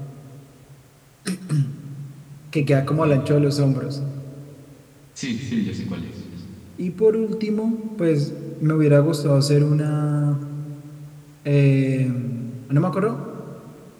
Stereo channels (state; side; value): identical; both; correlation 1.00